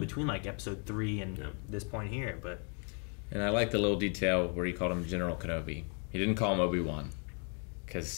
like episode 3 and this point here. But And I like the little detail where he called him General Kenobi. He didn't call him Obi-Wan.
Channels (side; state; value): right; quieter; 39.1 dB